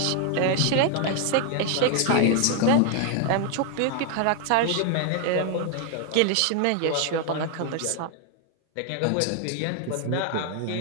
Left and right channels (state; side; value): different; both; correlation 0.00